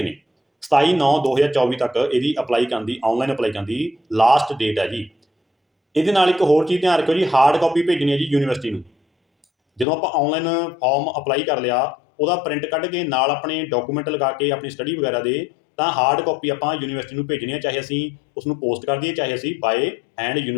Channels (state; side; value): drops out; right; at 9.9 s